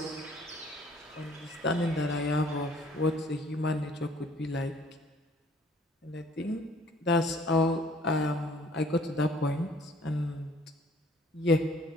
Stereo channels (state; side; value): normal; both; correlation 0.56